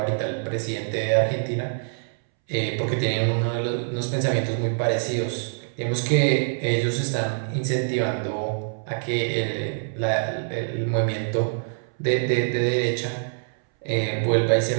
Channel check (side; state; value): left; silent; 62 dB below the other